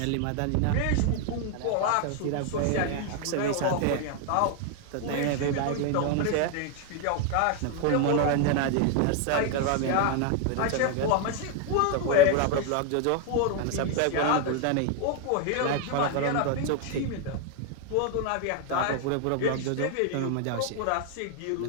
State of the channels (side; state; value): both; different; correlation 0.00